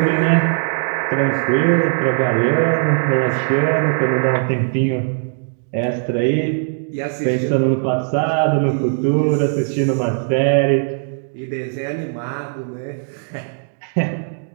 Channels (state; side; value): silent; left; digital silence